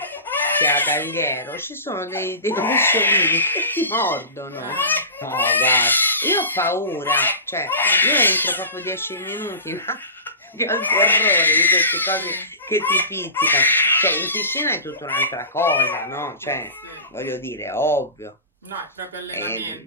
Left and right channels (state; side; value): inverted; both; correlation -0.30